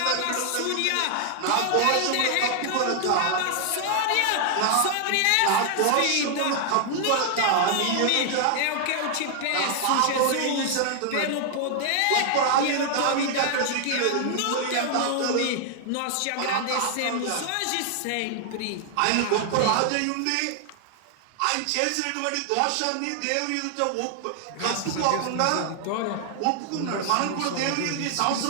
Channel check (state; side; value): different; both; correlation 0.00